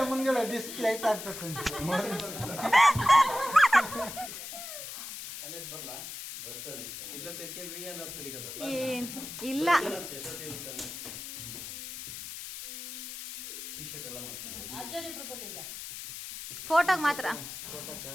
ಮುಂದ್ಗಡೆ ಡಿಸ್ಪ್ಲೇ ಆಗ್ತದೆ. ಏನ್ ಇಲ್ಲ. ಟೀ ಶರ್ಟ್ ಎಲ್ಲ ಮಾಡ್ತಾರೆ. ಫೋಟೋಗ್ ಮಾತ್ರ.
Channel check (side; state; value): left; noise; hiss, 9 dB below the sound